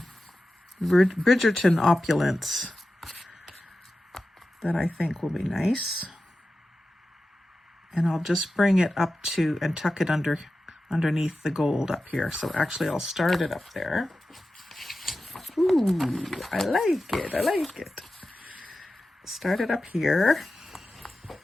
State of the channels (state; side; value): normal; both; correlation 0.93